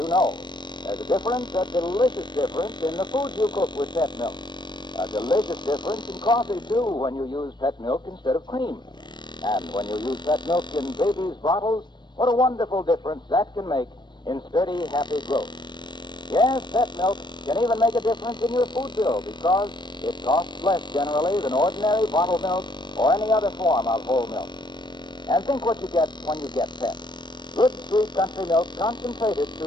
know. There's a difference, a delicious difference, in the foods you cook with pet milk. A delicious difference in coffee, too, when you use pet milk instead of cream. And when you use pet milk in babies' bottles, what a wonderful difference that can make in sturdy, happy growth. Yes, pet milk can even make a difference in your food bill because it costs less generally than ordinary bottled milk or any other form of whole milk. And think what you get when you get pet. Good, sweet country milk concentrated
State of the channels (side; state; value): right; late; 0.22 ms